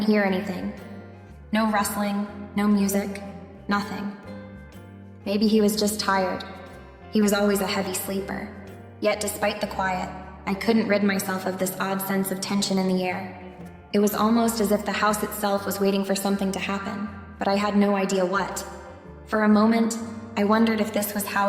hear anything. No rustling, no music, nothing. Maybe he was just tired. He was always a heavy sleeper. Yet despite the quiet, I couldn't rid myself of this odd sense of tension in the air. It was almost as if the house itself was waiting for something to happen, but I had no idea what. For a moment, I wondered if this was how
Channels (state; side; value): identical; both; correlation 1.00